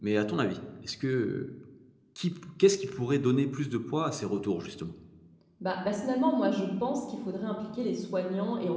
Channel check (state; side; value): identical; both; correlation 1.00